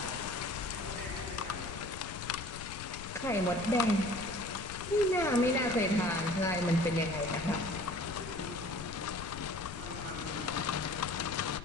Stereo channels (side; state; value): left; noise; rumble, 11 dB below the sound